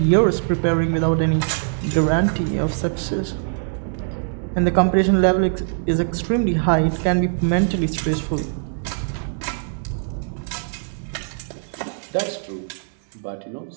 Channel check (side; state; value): left; silent; digital silence